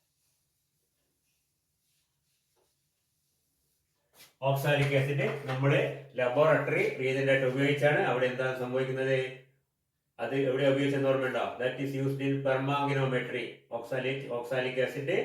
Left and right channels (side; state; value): both; identical; correlation 1.00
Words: Oxalic acid നമ്മുടെ laboratory reagent ആയിട്ട് ഉപയോഗിച്ചാണ്. അവിടെ എന്താണ് സംഭവിക്കുന്നത്? അത് എവിടെ ഉപയോഗിച്ചെന്ന് ഓർമ്മയുണ്ടോ? That is used in permanganometry. Oxalic acid